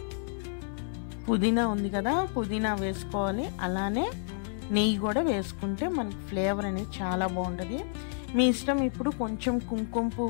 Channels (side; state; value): right; silent; 58 dB below the other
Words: పుదీనా ఉంది కదా, పుదీనా వేసుకోవాలి. అలానే నెయ్యి కూడా వేసుకుంటే మనకి ఫ్లేవర్ అనేది చాలా బాగుంటుంది. మీ ఇష్టం. ఇప్పుడు కొంచెం కుంకుమ